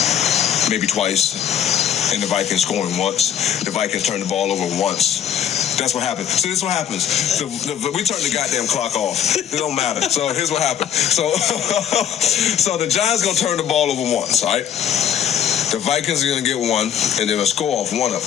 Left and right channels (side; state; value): right; quieter; 9.3 dB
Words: maybe twice, and the Vikings scoring once. The Vikings turn the ball over once. That's what happens. So this is what happens. We turn the goddamn clock off. It don't matter. So here's what happened. So the Giants gonna turn the ball over once, all right? The Vikings are gonna get one, and they're gonna score off one of